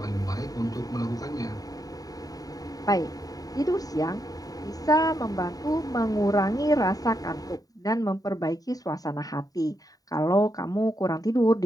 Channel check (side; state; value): right; late; 0.18 ms